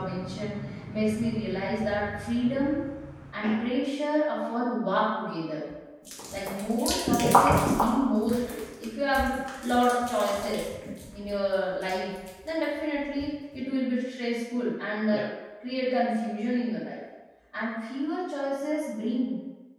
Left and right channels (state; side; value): identical; both; correlation 1.00